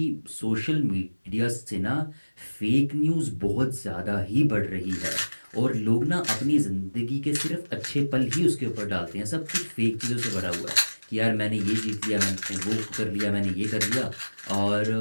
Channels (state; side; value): inverted; both; correlation -1.00